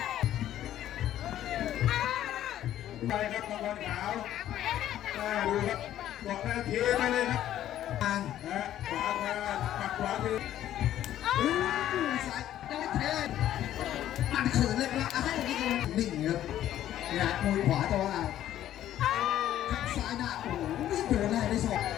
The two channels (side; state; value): right; quieter; 12.2 dB